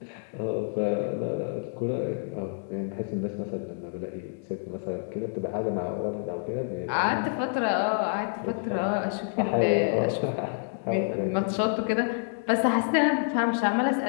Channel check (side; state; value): right; silent; digital silence